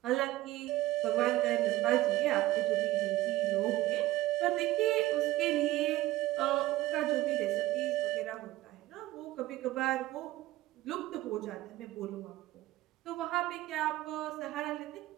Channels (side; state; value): left; quieter; 16.6 dB